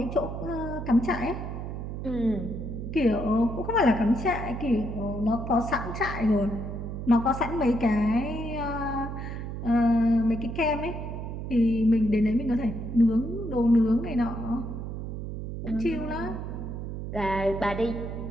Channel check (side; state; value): right; noise; hum, 6 dB below the sound